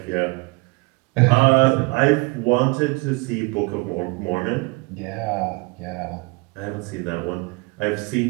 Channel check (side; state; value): left; quieter; 26.3 dB